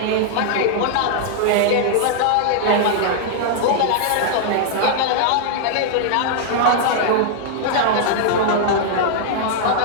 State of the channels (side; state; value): both; different; correlation -0.01